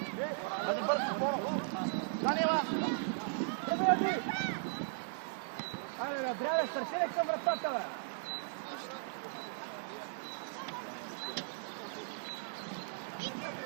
Айде бързо, Боно! Занила! Добре, ти! Айде, бе, браво, стартирай към вратата, бе!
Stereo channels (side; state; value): left; silent; digital silence